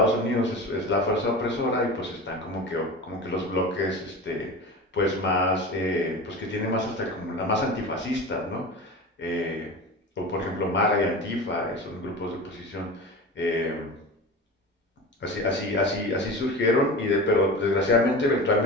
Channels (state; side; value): normal; both; correlation 0.31